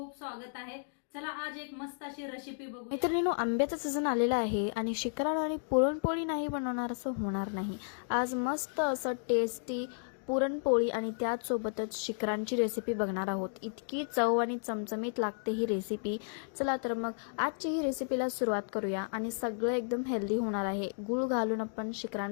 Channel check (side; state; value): right; silent; digital silence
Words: स्वागत आहे। चला आज एक मस्त अशी रेसिपी बघू। मित्रांनो, आंब्याचा सीझन आलेला आहे आणि शिकरण आणि पुरणपोळी नाही बनवणार असं होणार नाही। आज मस्त असं टेस्टी पुरणपोळी आणि त्याचसोबतच शिकरांची रेसिपी बघणार आहोत। इतकी चव आणि चमचमीत लागते ही रेसिपी। चला तर मग आजची ही रेसिपीला सुरुवात करूया आणि सगळं एकदम हेल्दी होणार आहे। गूळ घालून आपण